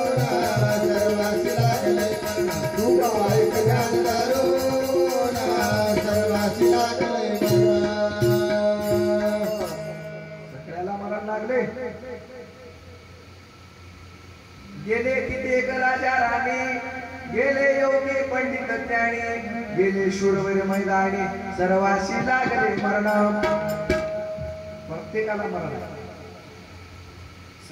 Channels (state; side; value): identical; both; correlation 1.00